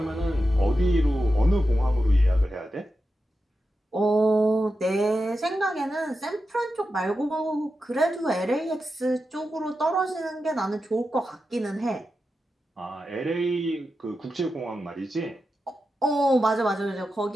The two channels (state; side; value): normal; both; correlation 0.90